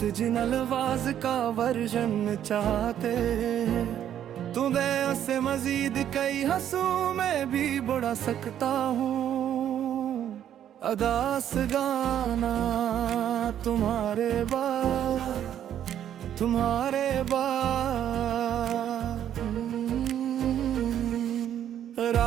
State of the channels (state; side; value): quieter; left; 10.4 dB